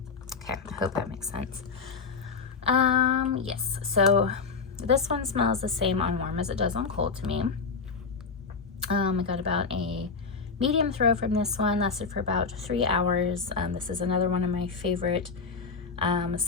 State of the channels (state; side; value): quieter; right; 4.9 dB